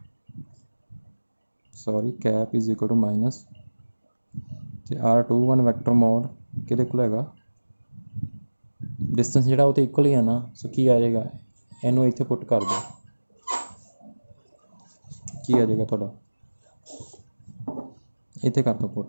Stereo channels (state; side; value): inverted; both; correlation -1.00